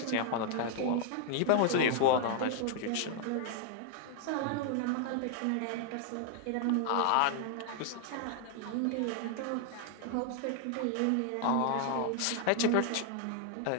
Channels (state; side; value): different; both; correlation 0.00